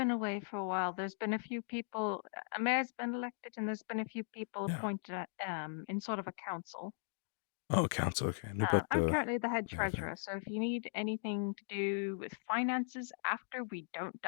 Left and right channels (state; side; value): silent; right; digital silence